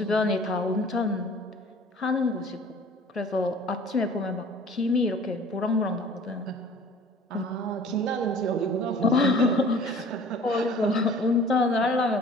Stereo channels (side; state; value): both; normal; correlation 0.49